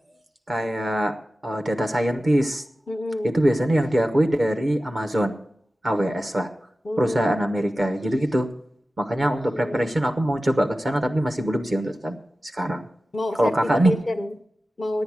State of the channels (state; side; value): normal; both; correlation 0.95